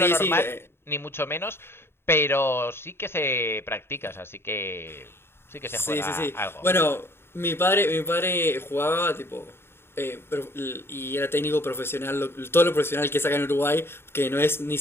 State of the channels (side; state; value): right; late; 0.11 ms